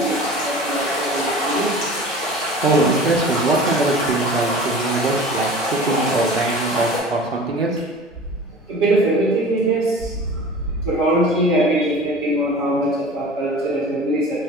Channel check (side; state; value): both; normal; correlation 0.40